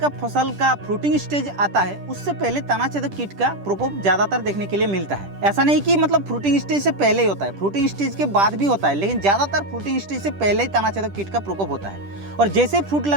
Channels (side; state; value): left; late; 10 ms